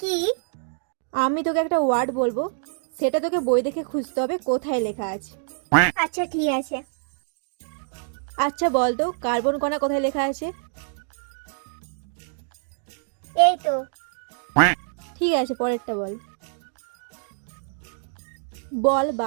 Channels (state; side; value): silent; left; digital silence